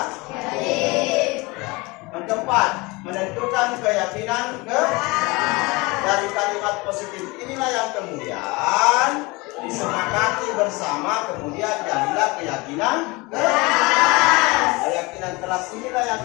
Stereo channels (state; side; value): quieter; right; 24.6 dB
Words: Yang keempat, menentukan keyakinan dari kalimat positif inilah yang kemudian disepakati bersama, kemudian jadilah keyakinan kelas inilah yang